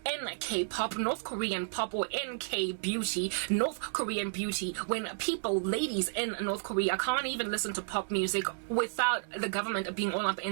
NK pop, North Korean pop, or NK beauty, North Korean beauty, when people, ladies in North Korea, can't even listen to pop music without the government being all up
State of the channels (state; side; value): silent; left; digital silence